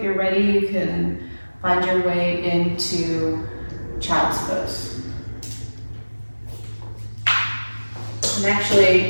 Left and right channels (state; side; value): inverted; both; correlation -1.00